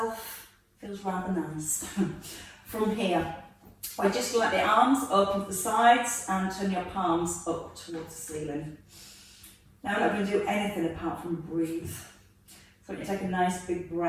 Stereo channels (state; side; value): identical; both; correlation 1.00